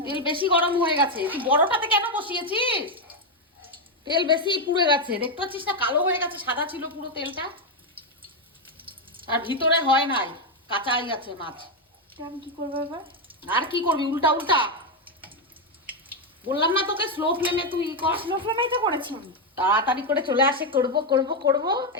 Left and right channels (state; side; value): normal; both; correlation 0.04